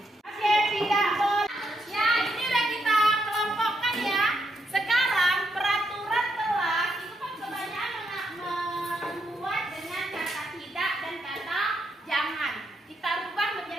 Oke, tidak boleh. Ya, ini udah kita kelompokkan ya. Sekarang peraturan kelas itu kan kebanyakan membuat dengan kata tidak dan kata jangan. Kita rubah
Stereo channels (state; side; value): normal; both; correlation 0.79